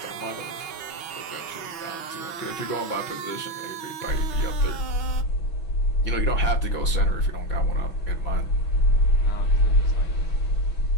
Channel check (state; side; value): late; right; 6.1 ms